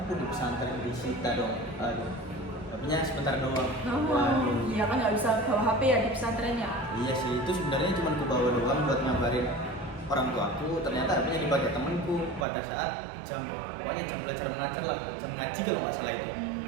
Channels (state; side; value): drops out; left; at 12.5 s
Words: di pesantren di Sita dong. Aduh, HP-nya sebentar doang. Iya kan nggak bisa bawa HP ya di pesantren ya. Iya sih, itu sebenarnya cuma aku bawa doang buat ngabarin orang tuaku. Ternyata HP-nya dipakai temanku pada saat pokoknya jam belajar mengajar lah, jam ngaji kalau nggak salah itu.